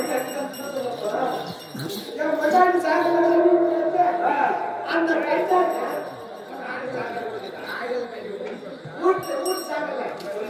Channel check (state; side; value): identical; both; correlation 1.00